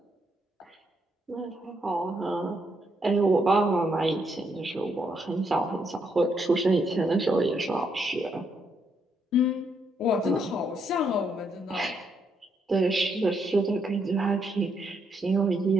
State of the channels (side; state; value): both; normal; correlation 0.76